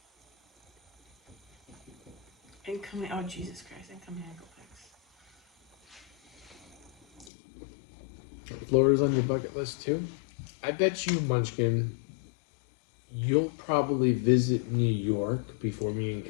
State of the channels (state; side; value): drops out; right; at 7.3 s